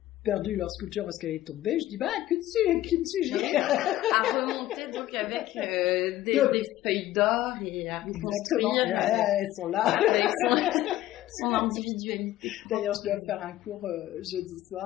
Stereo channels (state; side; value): quieter; right; 14.5 dB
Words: perdu leur sculpture parce qu'elle est tombée. Je dis, kintsugi. À remonter donc avec des feuilles d'or et à reconstruire. Elles sont là. Avec son individualité. D'ailleurs, je dois faire un cours jeudi